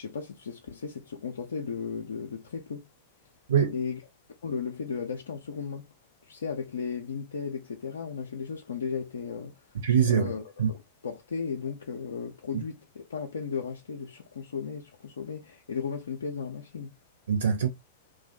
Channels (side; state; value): both; inverted; correlation -0.54